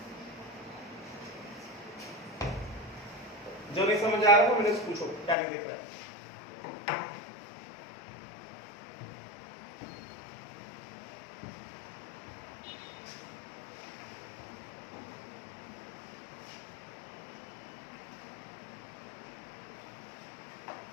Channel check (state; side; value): drops out; right; at 5.4 s